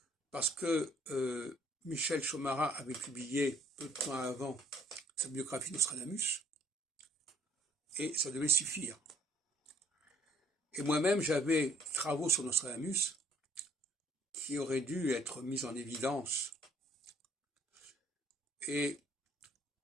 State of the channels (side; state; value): both; normal; correlation 0.59